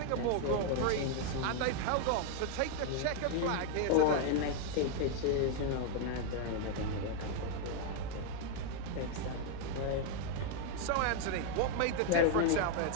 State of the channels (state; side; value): different; both; correlation 0.01